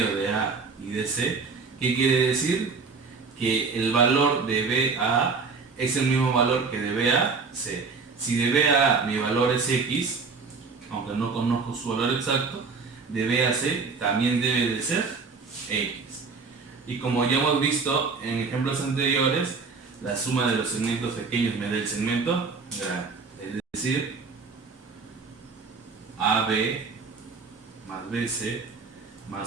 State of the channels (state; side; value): quieter; left; 4.7 dB